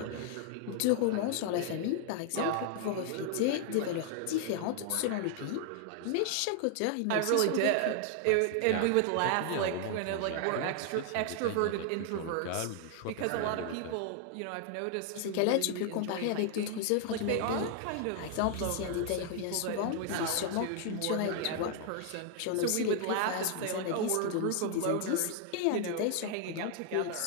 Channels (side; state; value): both; different; correlation 0.00